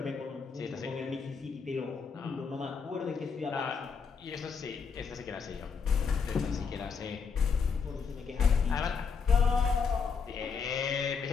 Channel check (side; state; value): right; quieter; 5.7 dB